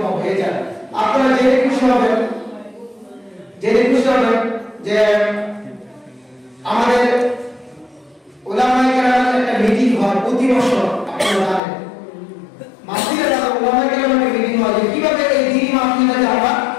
হয়ে যায়। আপনারা জেনে খুশি হবেন যে আমাদের উলামায়ে কেরামের একটা মিটিং হয় প্রতি বছর। আপনারা জানেন মাহফিলে যারা উলামায়ে কেরামের মিটিং হয় যে কিভাবে এই দ্বীনি মাহফিলটাকে আমরা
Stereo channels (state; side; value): drops out; right; at 11.6 s